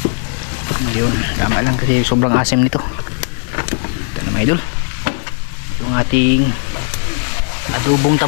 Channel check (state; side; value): silent; right; 68 dB below the other